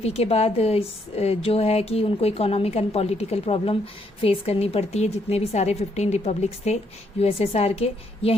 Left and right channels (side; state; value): both; normal; correlation 0.73